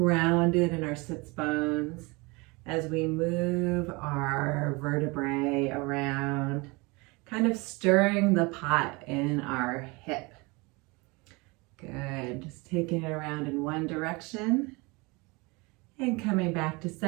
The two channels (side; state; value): left; quieter; 26.3 dB